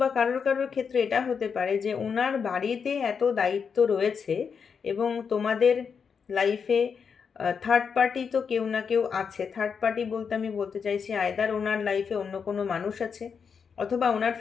কারোর কারোর ক্ষেত্রে এটা হতে পারে যে ওনার বাড়িতে এত দায়িত্ব রয়েছে, এবং তোমাদের লাইফে থার্ড পার্টি তো কেউ না কেউ আছে। থার্ড পার্টি বলতে আমি বলতে চাইছি আয়দার ওনার লাইফে অন্য কোনো মানুষ আছে, অথবা ওনার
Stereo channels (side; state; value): right; quieter; 6.3 dB